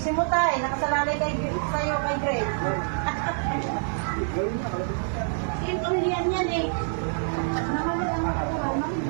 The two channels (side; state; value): left; silent; digital silence